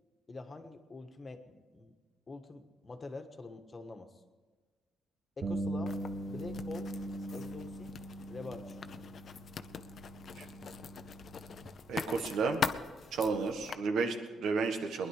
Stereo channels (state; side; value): normal; both; correlation 0.75